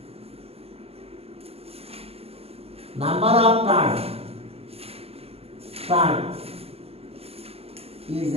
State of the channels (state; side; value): late; left; 0.29 ms